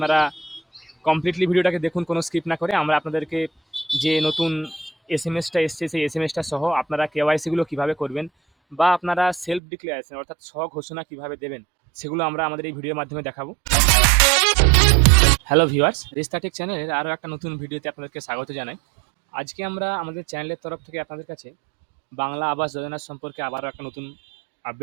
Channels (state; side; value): drops out; left; at 9.6 s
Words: কমপ্লিটলি ভিডিওটাকে দেখুন, কোনো স্কিপ না করে। আমরা আপনাদেরকে যে নতুন এসএমএসটা এসছে সেই এসএমএসটা সহ আপনারা কেওয়াইসিগুলো কিভাবে করবেন বা আপনারা সেলফ ডিক্লারেশন অর্থাৎ স্বঘোষণা কিভাবে দেবেন সেগুলো আমরা আমাদের এই ভিডিওর মাধ্যমে দেখাবো। হ্যালো ভিউয়ার্স, রিস্তাটেক চ্যানেলের আরও একটা নতুন ভিডিওতে আপনাদেরকে স্বাগত জানাই। আজকে আমরা আমাদের চ্যানেলের তরফ থেকে আপনাদের কাছে বাংলা আবাস যোজনার সম্পর্কে আবারও একটা নতুন